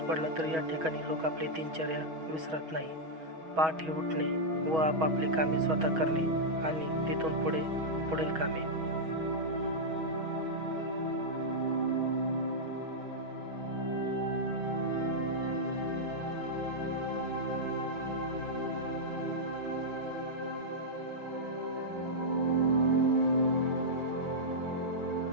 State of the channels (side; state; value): left; late; 6.3 ms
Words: पडला तरी या ठिकाणी लोक आपली दिनचर्या विसरत नाही. पहाटे उठणे व आपापली कामे स्वतः करणे आणि तिथून पुढील कामे.